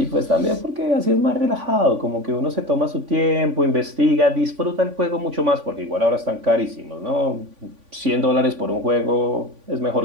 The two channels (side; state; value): left; late; 3.5 ms